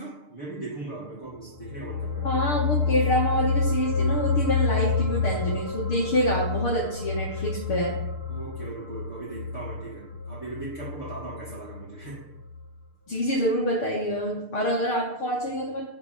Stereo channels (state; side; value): late; right; 6.7 ms